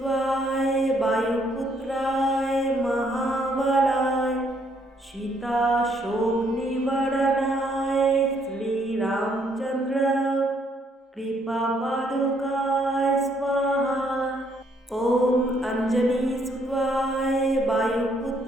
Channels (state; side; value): normal; both; correlation 0.69